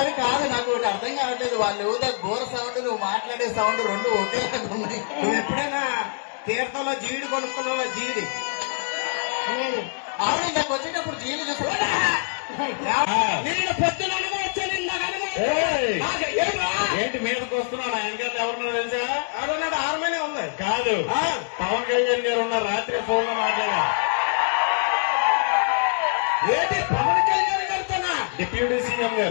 కాదు, నాకు ఒకటి అర్థం కావట్లేదు. వాళ్ళు ఊదే బోర సౌండ్, నువ్వు మాట్లాడే సౌండ్ రెండు ఒకేలాగా ఉన్నాయి. నువ్వు ఎప్పుడైనా తీర్థంలో జీడి కొనుక్కున్నావా? జీడి అవును, నాకు వచ్చేటప్పుడు జీళ్ళు చూసి నేను పొద్దున ఏంటి మీదకి వస్తున్నాను? అంకెల్ ఎవరున్నా తెలుసా? ఎవరున్నాడు? హార్మోనియం ఉంది కాదు, పవన్ కళ్యాణ్ గారు ఉన్న రాత్రి ఫోన్ లో మాట్లాడా. ఏంటి పవన్ కళ్యాణ్ గారితోనా? డిప్యూటీ సీఎం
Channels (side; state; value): right; silent; 62 dB below the other